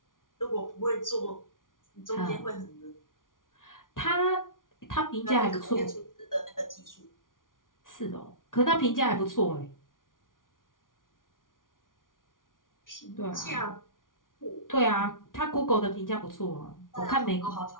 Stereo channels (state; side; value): late; right; 0.89 ms